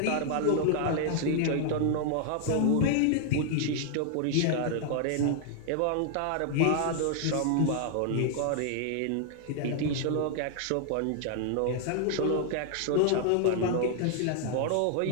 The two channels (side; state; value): both; different; correlation 0.00